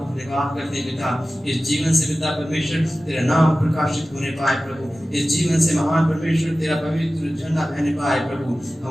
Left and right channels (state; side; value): normal; both; correlation 0.95